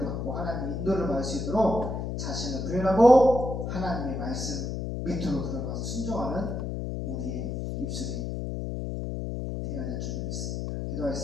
받고 하나님의 인도를 받을 수 있도록 자신을 부인하고 하나님의 말씀 밑으로 들어가서 순종하는 우리의 입술이 되어야 될 줄 믿습니다.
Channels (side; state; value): left; noise; hum, 3 dB below the sound